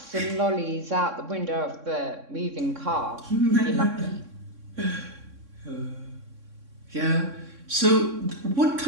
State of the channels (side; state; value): left; late; 3.6 ms